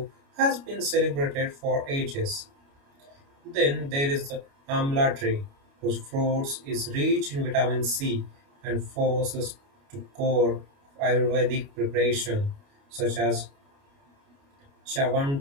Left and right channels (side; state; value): left; late; 29 ms